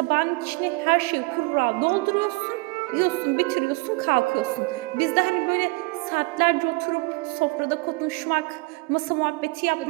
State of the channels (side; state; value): left; quieter; 26.9 dB